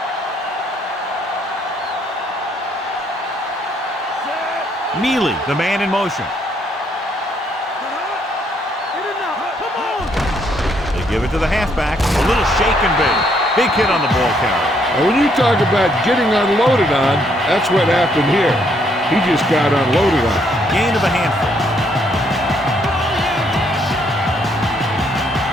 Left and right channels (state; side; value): normal; both; correlation 0.71